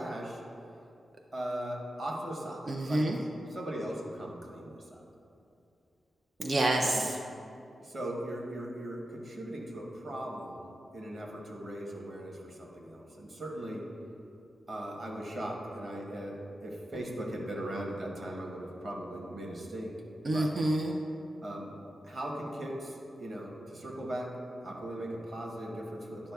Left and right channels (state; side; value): normal; both; correlation 0.90